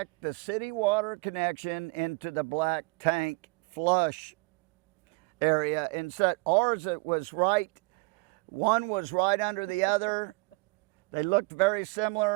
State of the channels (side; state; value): left; quieter; 28.1 dB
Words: the city water connection into the black tank flush area. And so ours, it was right, one was right under the other. They looked very